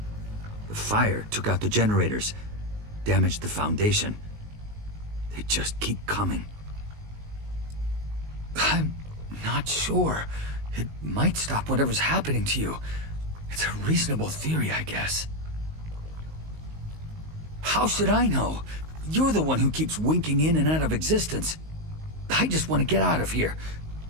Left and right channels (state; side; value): late; left; 19 ms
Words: The fire took out the generators, damaged the foundation. They just keep coming. I'm not sure. It might stop whatever's happening to you. It's a reasonable theory, I guess. How should I know? You're the one who keeps winking in and out of existence. I just want to get out of here.